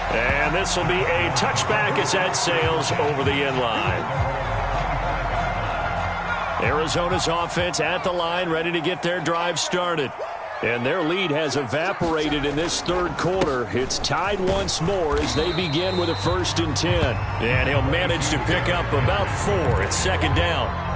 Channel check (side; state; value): both; identical; correlation 1.00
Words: And this will be a touchback as that sails over the end line. Arizona's offense at the line, ready to get their drive started. And their lead has evaporated in this 3rd quarter. It's tied once more as they begin with a 1st and 10. And he'll manage to pick up about 4 at 2nd down.